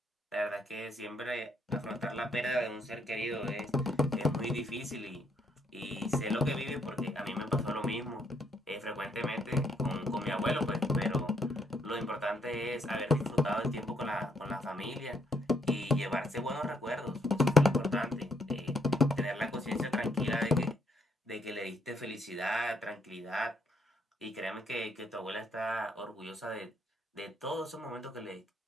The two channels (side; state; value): both; normal; correlation 0.72